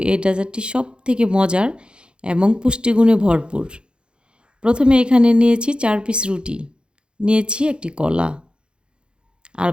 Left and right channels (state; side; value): late; left; 0.053 ms